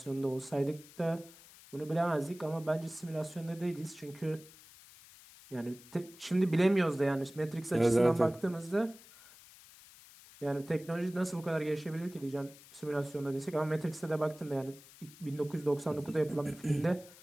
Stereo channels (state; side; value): noise; left; hiss, 21 dB below the sound